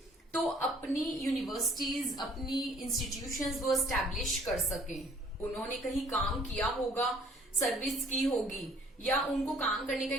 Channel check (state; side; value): normal; both; correlation 0.58